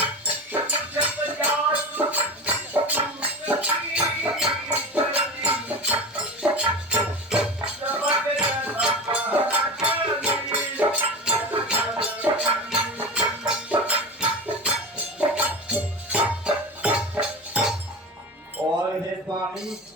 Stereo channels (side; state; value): both; normal; correlation 0.26